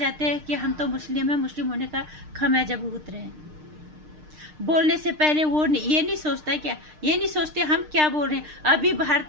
हैं कि हम तो मुस्लिम हैं, मुस्लिम होने का खमियाजा भुगत रहे हैं। बोलने से पहले वो ये नहीं सोचता क्या, ये नहीं सोचते हम क्या बोल रहे हैं। अभी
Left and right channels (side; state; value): left; late; 6.6 ms